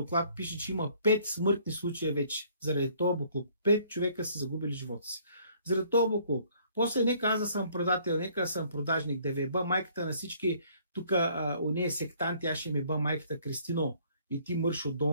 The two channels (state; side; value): inverted; both; correlation -0.60